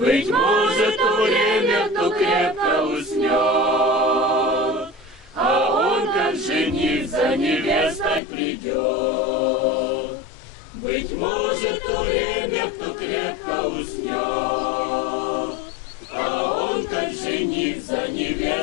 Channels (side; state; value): right; drops out; at 8.2 s